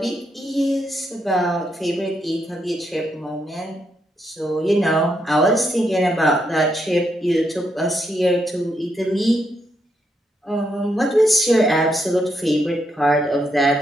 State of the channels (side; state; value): both; normal; correlation 0.79